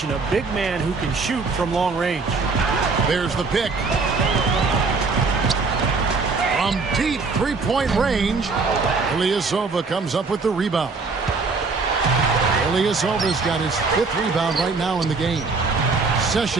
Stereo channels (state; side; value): quieter; left; 4.2 dB